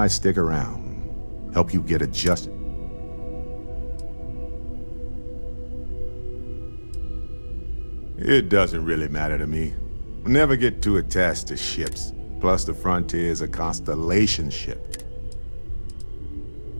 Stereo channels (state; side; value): inverted; both; correlation -1.00